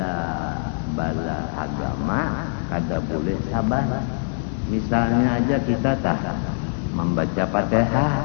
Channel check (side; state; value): right; silent; 61 dB below the other